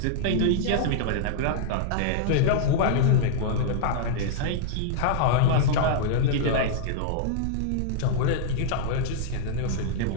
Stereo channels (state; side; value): different; both; correlation -0.01